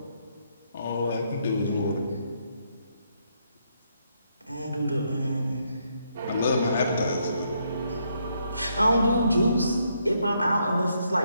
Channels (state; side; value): inverted; both; correlation -0.75